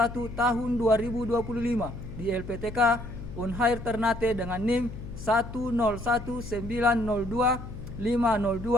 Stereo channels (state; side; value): noise; left; hum, 11 dB below the sound